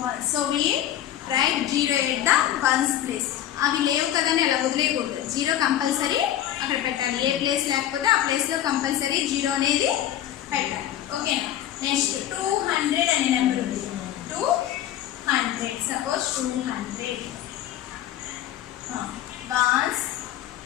one. So we write 0 at the ones place. అవి లేవు కదని అలా వదిలేయకూడదు. 0 compulsory అక్కడ పెట్టాలి. ఏ place లేకపోతే ఆ place లో compulsory 0 అనేది పెట్టాలి. ఓకేనా? నెక్స్ట్ 200 అనే నెంబర్ ఉంది. 200. Suppose 200. Ones,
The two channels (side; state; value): right; quieter; 11.9 dB